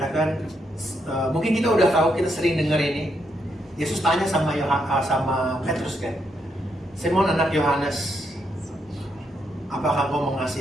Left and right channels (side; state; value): both; normal; correlation 0.78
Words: mungkin kita udah tahu, kita sering dengar ini. Yesus tanya sama Petrus kan, Simon anak Yohanes, apakah kau